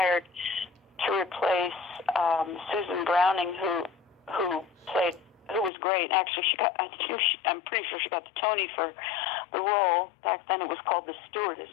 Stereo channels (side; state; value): right; drops out; at 5.7 s